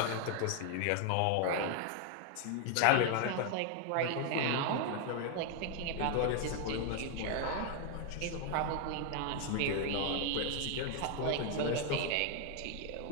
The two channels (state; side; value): different; both; correlation 0.00